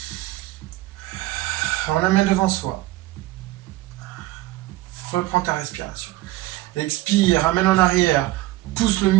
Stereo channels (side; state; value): left; quieter; 17.2 dB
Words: On amène devant soi. Reprends ta respiration. Expire, amène en arrière. Pousse le